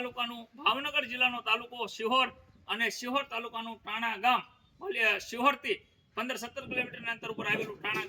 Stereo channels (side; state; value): both; identical; correlation 1.00